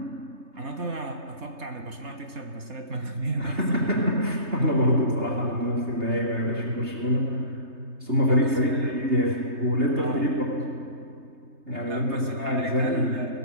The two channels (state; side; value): late; left; 3.3 ms